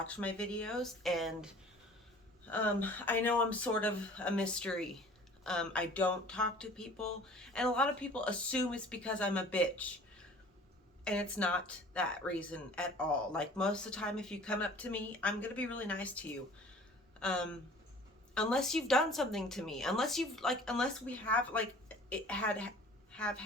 my videos, and I know I'm sort of a mystery. I don't talk to people, and a lot of people assume it's because I'm a bitch. And it's not that reason at all. Like, most of the time, if you come up to me, I'm gonna be really nice to you. Um, Unless you've done something to me, unless we have have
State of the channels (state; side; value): normal; both; correlation 0.48